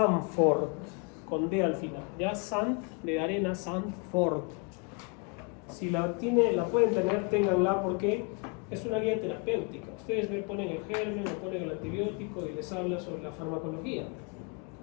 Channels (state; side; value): quieter; right; 33.4 dB